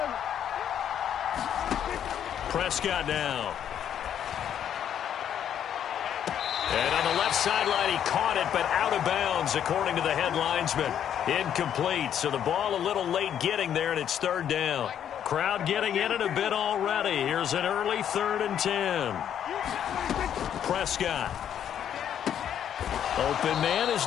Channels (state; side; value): quieter; right; 9.5 dB